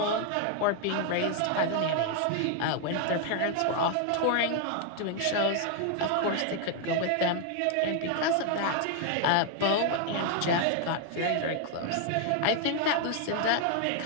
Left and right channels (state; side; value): different; both; correlation 0.00